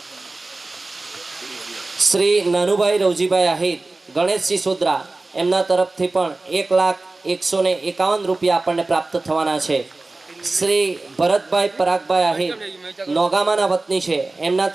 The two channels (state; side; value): quieter; left; 3.2 dB